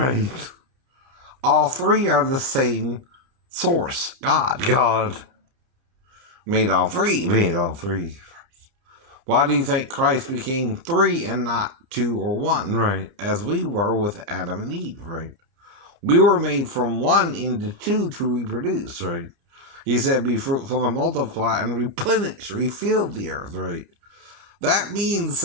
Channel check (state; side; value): late; left; 29 ms